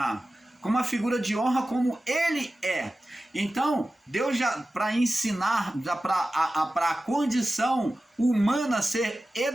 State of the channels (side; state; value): both; normal; correlation 0.95